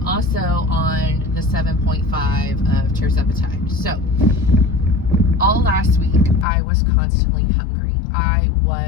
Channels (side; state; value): right; drops out; at 6.5 s